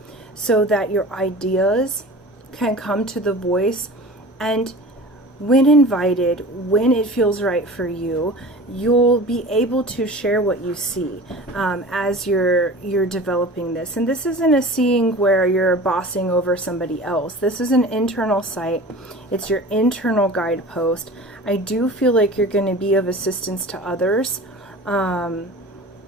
so that your ideas can come to the voice, and when invited, when it feels right for you, you'll be able to share what you see as you're developing this. And this isn't a seeing where you're bossing over somebody else. This is an internal sight. It's your internal guidepost. I do feel like you're going to be of assistance to others,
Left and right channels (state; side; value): normal; both; correlation 0.38